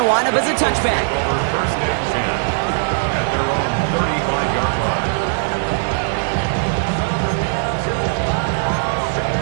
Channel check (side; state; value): left; silent; 57 dB below the other